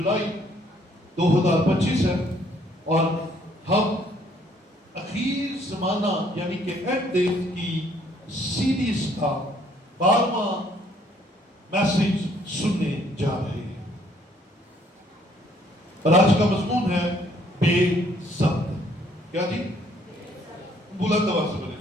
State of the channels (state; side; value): normal; both; correlation 0.64